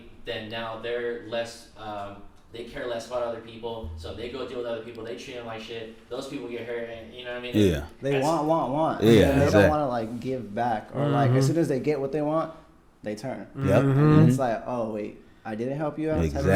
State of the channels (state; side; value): identical; both; correlation 1.00